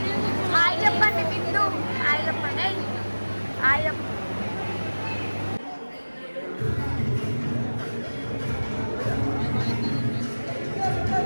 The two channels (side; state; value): both; inverted; correlation -1.00